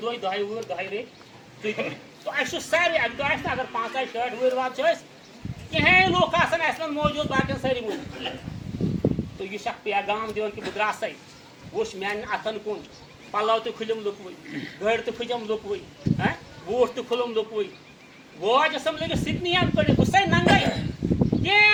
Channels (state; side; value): identical; both; correlation 1.00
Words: دۄہہِ دۄہے وُہٕرۍ دۄہے ریٚتۍ تُہۍ تہٕ اَسہِ چھُ سارے اَکہِ دۄہ آسہِ نہٕ اگر 5-6 وُہٕرۍ واد چھِ أسۍ کِہینۍ لُکھ آسان اَسہِ منٛز موٗجوٗد باقین سٲری موٗجوٗد تہٕ یہِ چھُ اکھ پیغام دِوان کہِ بہٕ درٛاسَے وٕچھ میانٮ۪ن اَتھن کُن پَلو تہِ کھُلِم لُکوٕے گٔرۍ تہِ کھٔجم لُکوٕے بوٗٹھ تہِ کھُلُم لُکوٕے واج ٲسٕم لٔگِتھ سِکنِیَن کٔڑِتھ بہٕ چھُسَے ننٛگَے